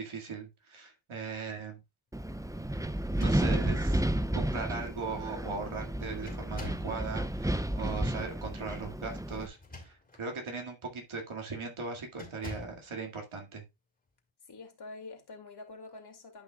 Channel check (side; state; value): both; normal; correlation 0.69